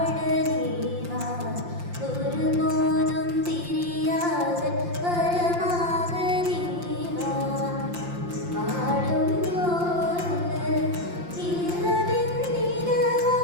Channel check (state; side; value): late; left; 5.7 ms